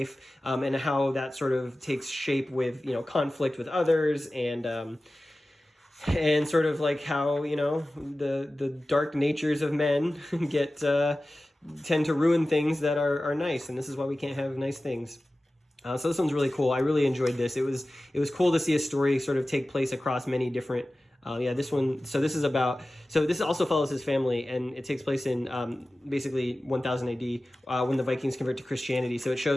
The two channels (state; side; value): normal; both; correlation 0.96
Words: and how that sort of takes shape with, conflict with others and sort of like how, the dark natures of men tend to ruin things that are nice, and this is why we can't have nice things. So this one's really cool. I really enjoyed this. It was cool to see a story sort of take place across many different. This one. So this also follows his family, and it takes place in basically 1000 AD when the Vikings convert to Christianity. So it